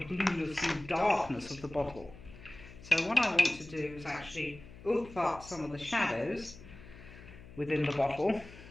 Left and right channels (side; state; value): left; noise; hum, 17 dB below the sound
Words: blueness and darkness of the bottle. So what I want to do is actually oomph up some of the shadows within the bottle.